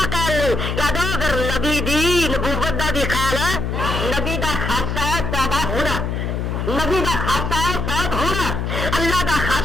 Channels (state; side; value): noise; left; hum, 2 dB below the sound